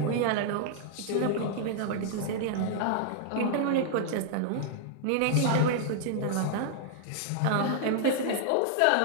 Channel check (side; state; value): both; different; correlation -0.01